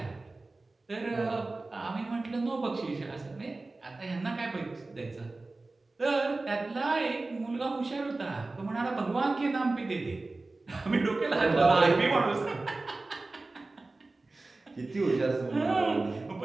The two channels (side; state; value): left; quieter; 3.3 dB